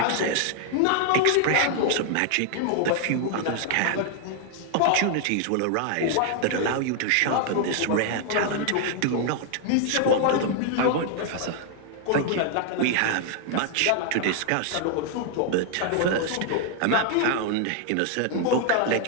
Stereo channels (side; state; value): both; different; correlation 0.00